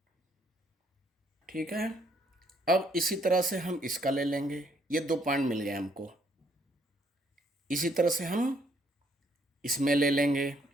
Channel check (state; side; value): normal; both; correlation 0.69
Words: ठीक है। अब इसी तरह से हम इसका ले लेंगे, ये 2 पॉइंट मिल गए हमको। इसी तरह से हम इसमें ले लेंगे